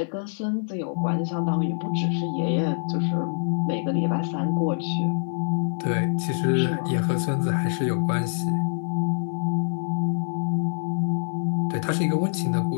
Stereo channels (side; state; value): right; silent; digital silence